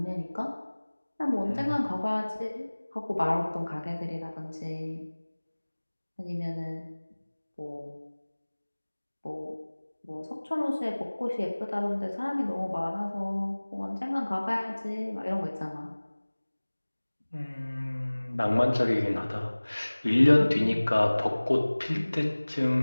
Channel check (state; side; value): inverted; both; correlation -1.00